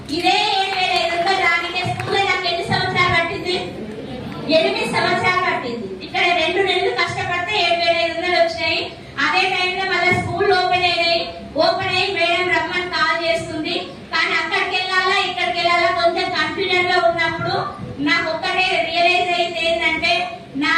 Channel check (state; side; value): identical; both; correlation 1.00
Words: ఇదే 7,500 రానికే స్కూల్లో నాకు ఎన్ని సంవత్సరాలు పట్టింది? 8 సంవత్సరాలు పట్టింది. ఇక్కడ 2 నెలలు కష్టపడితే 7,500 వచ్చినాయి. అదే టైంలో మళ్ళీ స్కూల్ ఓపెన్ అయ్యి మేడం రమ్మని కాల్ చేస్తుంది. కానీ అక్కడికి వెళ్ళాలా ఇక్కడికి వెళ్ళాలా కొంచెం కన్ఫ్యూజన్ లో ఉన్నప్పుడు నాకు ఒక్కటే రియలైజ్ అయింది ఏంటంటే, నా